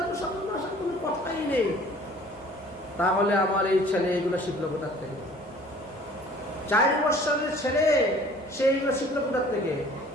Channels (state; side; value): normal; both; correlation 0.51